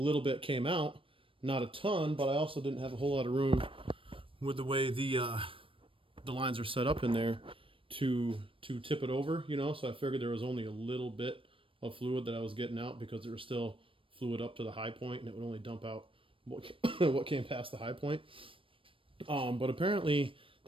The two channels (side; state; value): left; late; 0.25 ms